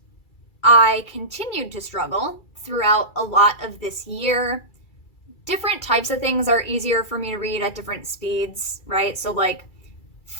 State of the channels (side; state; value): right; late; 2.3 ms